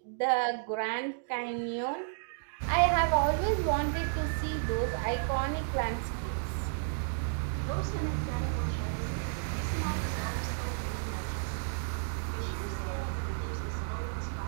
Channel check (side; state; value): left; silent; digital silence